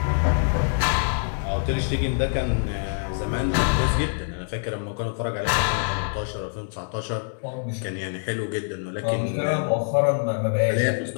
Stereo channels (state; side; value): silent; right; digital silence